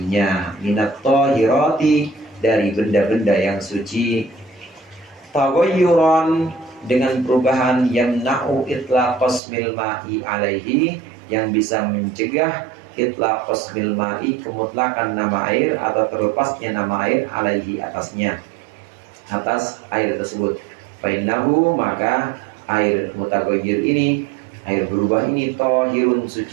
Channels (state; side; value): drops out; left; at 9.4 s